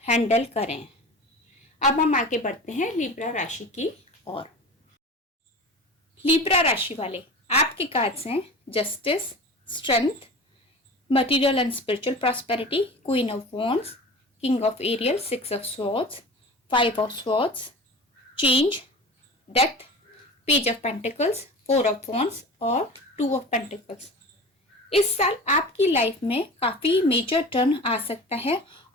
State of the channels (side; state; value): both; normal; correlation 0.35